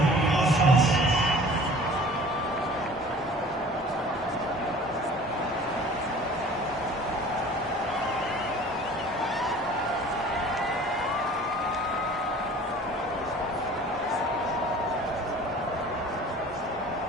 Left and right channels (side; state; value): both; normal; correlation 0.46